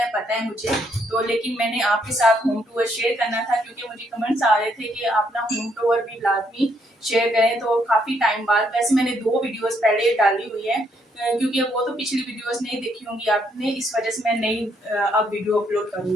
पता है मुझे। तो लेकिन मैंने आपके साथ होम टूर शेयर करना था, क्योंकि मुझे कमेंट्स आ रहे थे कि अपना होम टूर भी लाजमी शेयर करें। तो काफी टाइम बाद, वैसे मैंने 2 वीडियोस पहले डाली हुई है, क्योंकि वो तो पिछली वीडियोस नहीं देखी होंगी आपने, इस वजह से मैं नई अब वीडियो अपलोड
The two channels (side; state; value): both; normal; correlation 0.73